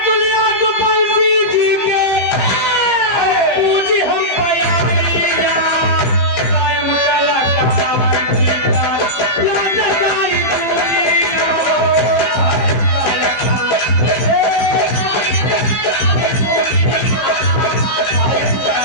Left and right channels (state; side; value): late; right; 15 ms